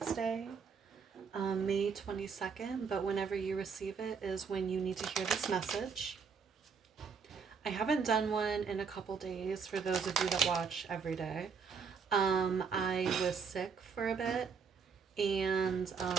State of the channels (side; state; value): left; quieter; 5.8 dB